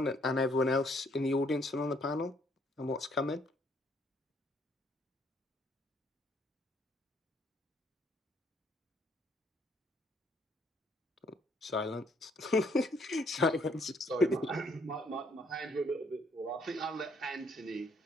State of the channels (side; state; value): both; normal; correlation 0.67